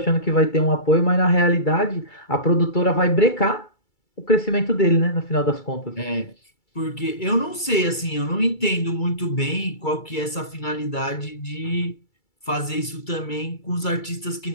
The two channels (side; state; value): right; late; 2.3 ms